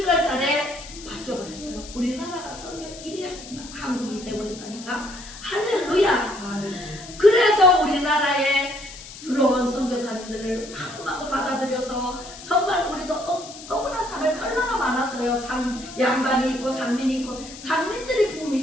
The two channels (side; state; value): left; noise; hiss, 15 dB below the sound